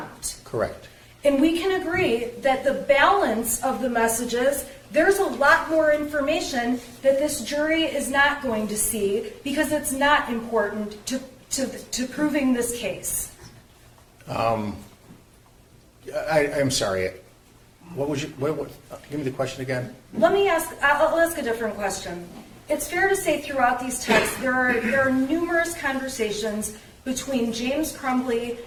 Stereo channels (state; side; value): identical; both; correlation 1.00